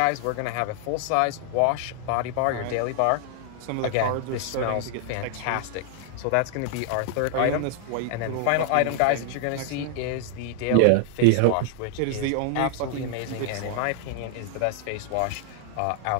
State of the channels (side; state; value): both; different; correlation -0.01